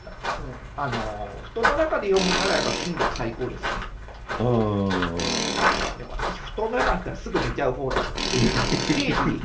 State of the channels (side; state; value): both; identical; correlation 1.00